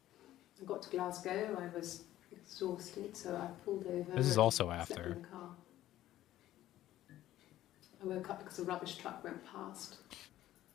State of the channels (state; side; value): quieter; right; 13.9 dB